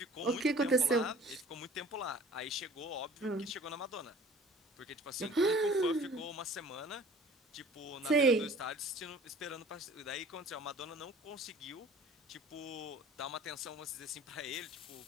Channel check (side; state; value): both; normal; correlation 0.48